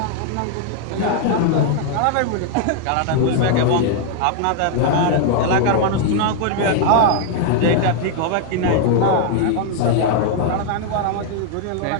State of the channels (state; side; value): different; both; correlation 0.00